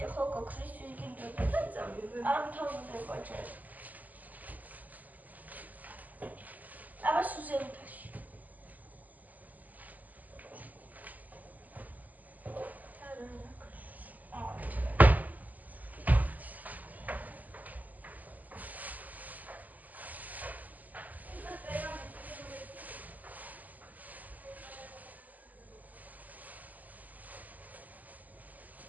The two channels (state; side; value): late; left; 0.080 ms